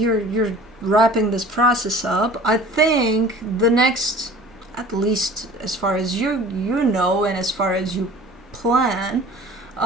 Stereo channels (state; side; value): normal; both; correlation 0.44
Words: wrapping this process up, I think the next, at least as far as you know and as far as you plan,